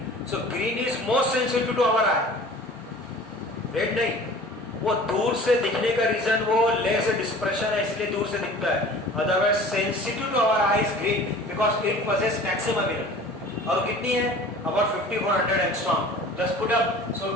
So green is most sensitive to our eye, red नहीं। वो दूर से दिखने का रीजन वो लेस डिस्पर्शन है, इसलिए दूर से दिखता है। Otherwise sensitive to our eye is green because it possess maximum energy. और कितनी है? About 5400 angstrom. Just put up, so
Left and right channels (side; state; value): both; normal; correlation 0.44